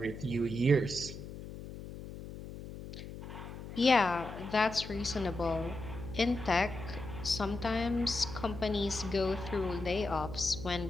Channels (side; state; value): left; noise; hum, 11 dB below the sound